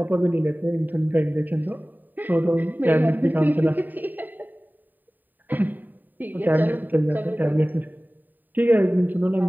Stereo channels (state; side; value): late; left; 0.089 ms